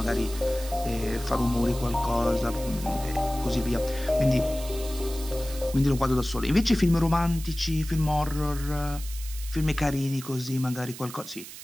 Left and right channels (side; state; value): right; noise; hiss, 13 dB below the sound